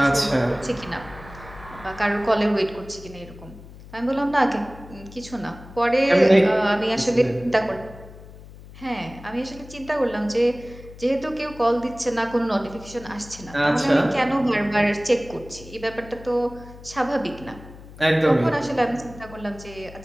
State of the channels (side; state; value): left; noise; hum, 18 dB below the sound